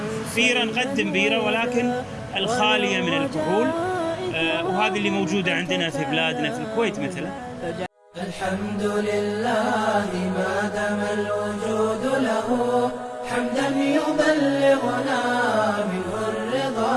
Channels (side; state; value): both; identical; correlation 1.00